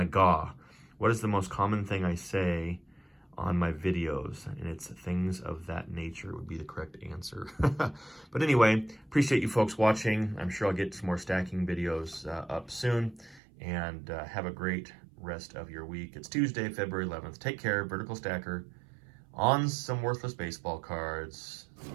GAW. What is the most common thing I say on my videos? And it's things of that nature would be the correct answer. But anyway, appreciate you folks watching. I'm sure I'll get some more stacking videos up soon. And have a great rest of your week. It's Tuesday, February 11th. Take care, Vertical Stacker. On some worthless baseball cards.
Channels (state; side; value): drops out; left; at 13.4 s